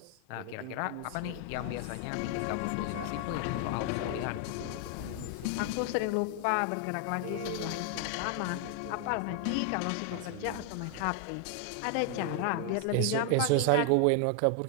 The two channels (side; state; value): both; different; correlation 0.00